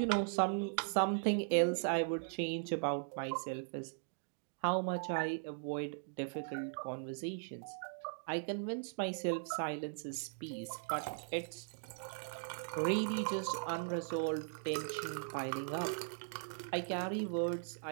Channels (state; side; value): silent; left; digital silence